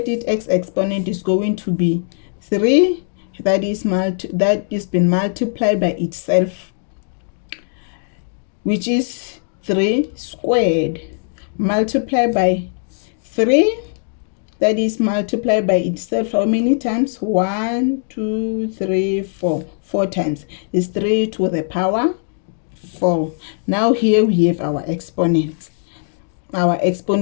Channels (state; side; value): silent; right; digital silence